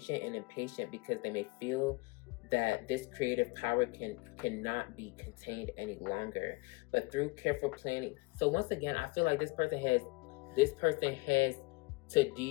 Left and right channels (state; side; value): quieter; right; 24.9 dB